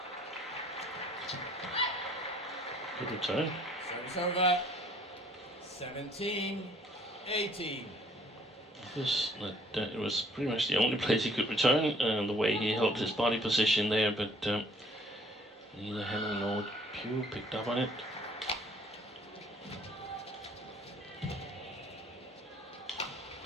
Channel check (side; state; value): both; normal; correlation 0.58